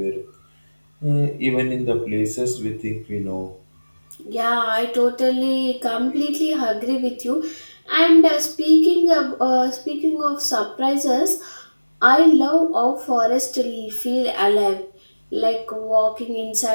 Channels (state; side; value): inverted; both; correlation -1.00